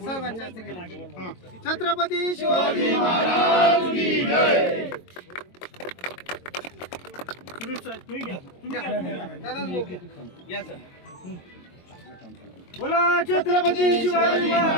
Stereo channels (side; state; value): right; late; 22 ms